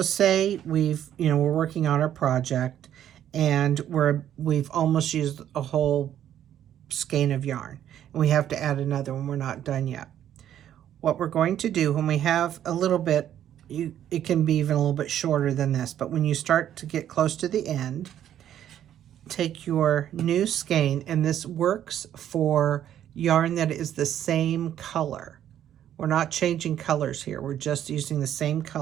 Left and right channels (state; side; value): quieter; left; 10.8 dB